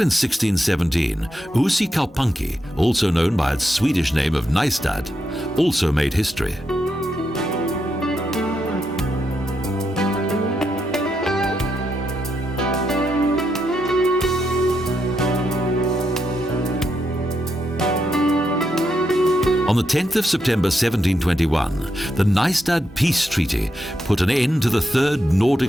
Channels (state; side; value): normal; both; correlation 0.82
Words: 1617, Kaupunki, also known by its Swedish name of Nystad, also made history. On the 10th of September 1721, the Nystad Peace Treaty put an end to the Third